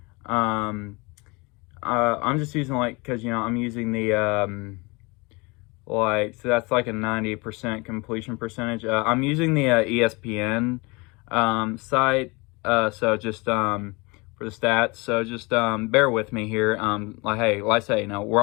I'm just using because I'm using the so that's like a 90% completion percentage. I'm using the ESPN site. So just for the stats. So just bear with me here. Hey, like I say,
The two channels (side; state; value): right; quieter; 26.8 dB